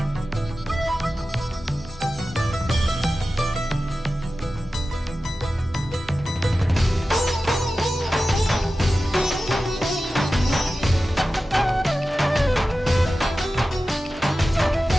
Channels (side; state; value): both; normal; correlation 0.94